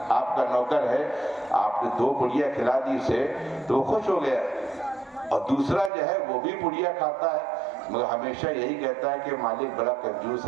آپ کا نوکر ہے، آپ نے 2 پڑیا کھلا دی اسے تو وہ خوش ہو گیا، اور دوسرا جو ہے وہ بھی پڑیا کھاتا ہے مگر ہمیشہ یہی کہتا ہے کہ مالک بڑا کنجوس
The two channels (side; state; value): left; drops out; at 5.9 s